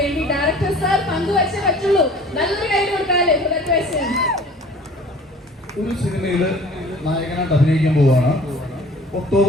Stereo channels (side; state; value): both; normal; correlation 0.48